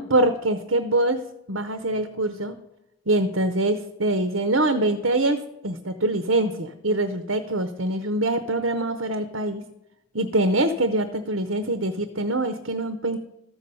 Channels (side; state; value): both; normal; correlation -0.08